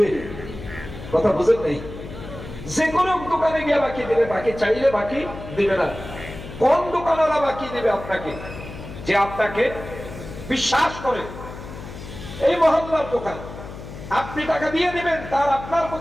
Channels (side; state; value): left; noise; hum, 12 dB below the sound